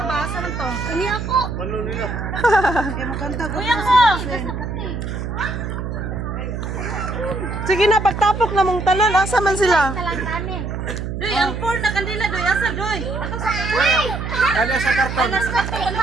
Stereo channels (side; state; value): right; noise; hum, 5 dB below the sound